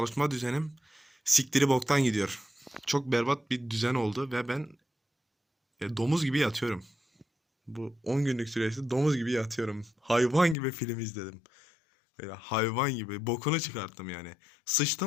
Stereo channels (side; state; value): right; drops out; at 10.6 s